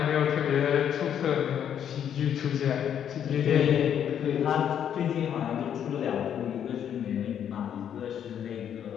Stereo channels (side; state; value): right; quieter; 9.2 dB